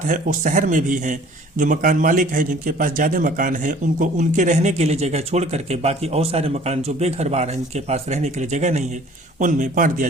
है वो शहर में भी हैं। जो मकान मालिक है जिनके पास ज़्यादा मकान है उनको उनके रहने के लिए जगह छोड़ करके बाकी और सारे मकान जो बेघरबार हैं जिनके पास रहने के लिए जगह नहीं है उनमें बांट दिया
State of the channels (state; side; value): normal; both; correlation 0.52